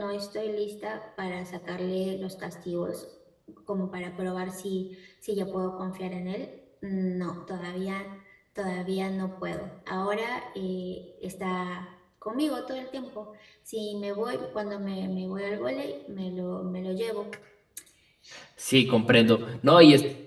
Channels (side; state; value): both; identical; correlation 1.00